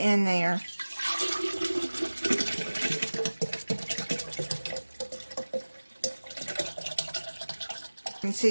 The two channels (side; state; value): both; inverted; correlation -1.00